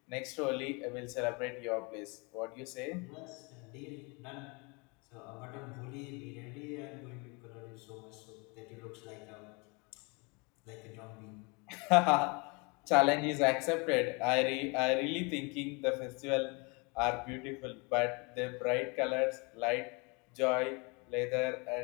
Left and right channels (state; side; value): quieter; right; 29.8 dB